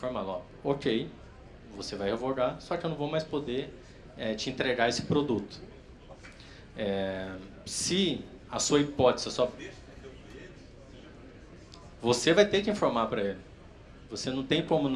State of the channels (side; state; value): both; identical; correlation 1.00